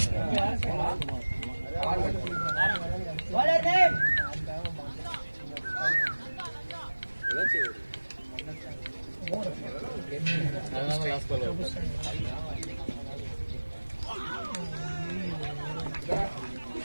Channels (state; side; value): inverted; both; correlation -1.00